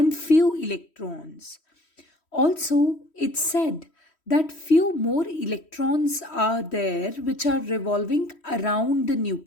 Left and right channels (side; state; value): right; late; 3.1 ms